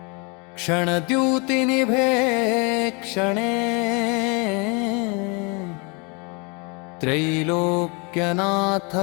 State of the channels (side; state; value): right; quieter; 31.6 dB